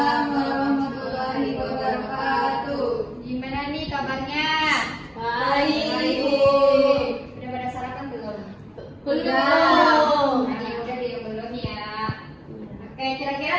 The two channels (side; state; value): both; identical; correlation 1.00